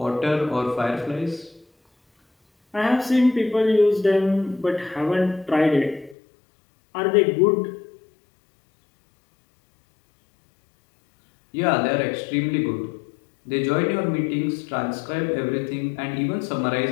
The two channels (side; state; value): right; drops out; at 6.2 s